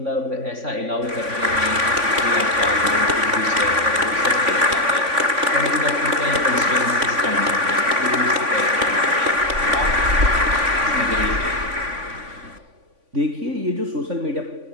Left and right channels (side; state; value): left; late; 3.5 ms